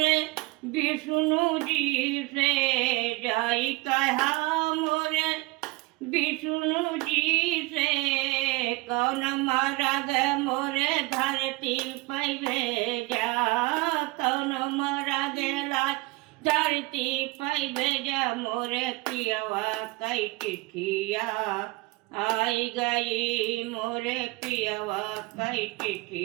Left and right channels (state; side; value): quieter; left; 22.2 dB